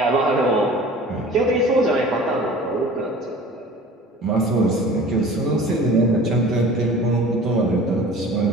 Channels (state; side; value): normal; both; correlation 0.43